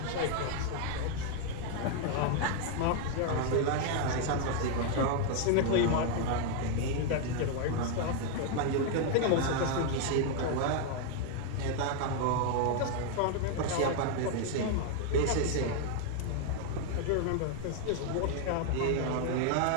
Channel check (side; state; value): both; different; correlation 0.00